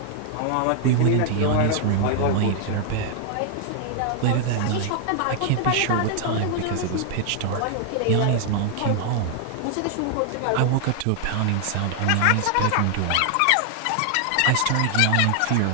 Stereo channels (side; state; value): both; different; correlation 0.00